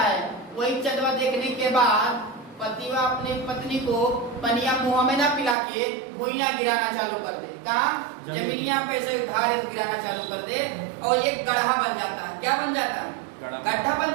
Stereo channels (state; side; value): drops out; left; at 5.6 s